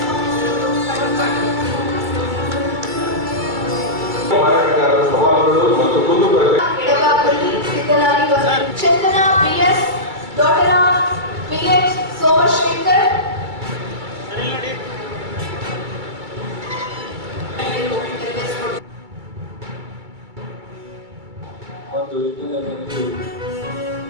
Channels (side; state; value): left; late; 2.3 ms